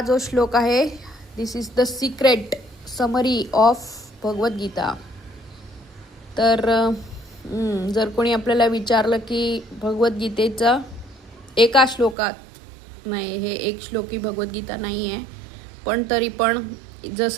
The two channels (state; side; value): drops out; left; at 12.2 s